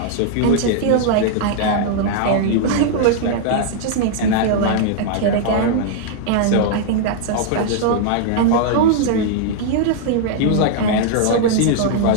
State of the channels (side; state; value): both; different; correlation -0.01